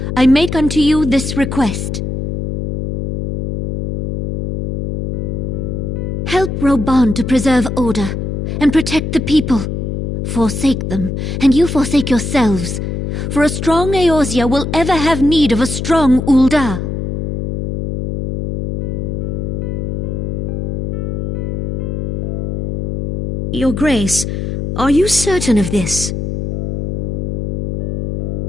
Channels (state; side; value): noise; left; hum, 3 dB below the sound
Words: I make unto you this request. Help Roban to preserve order and protect the people. Forsake them, and you forsake yourselves, for a strong Eorzea will ever have need of a strong Ul'dah. Your Grace, are you certain of this?